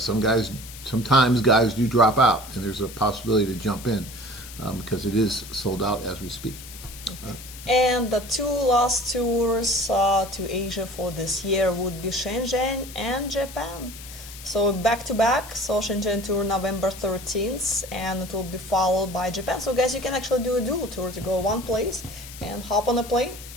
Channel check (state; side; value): noise; left; hiss, 15 dB below the sound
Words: guys do drop out, and there's a possibility to jump in because it is sold out as we speak. And the two last tours to Asia for this year would be Shenzhen and Japan. So back to back, so Shenzhen tour November 13th, and it will be followed by Japan. So guys, you can actually do a dual tour to go one place and hop on a plane,